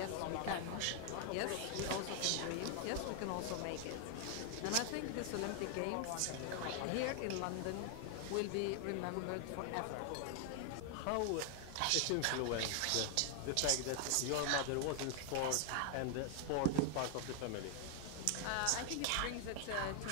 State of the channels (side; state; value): both; different; correlation 0.00